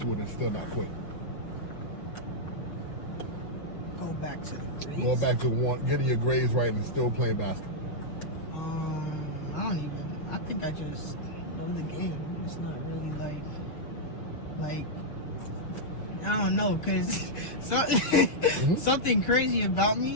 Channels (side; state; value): right; late; 6.6 ms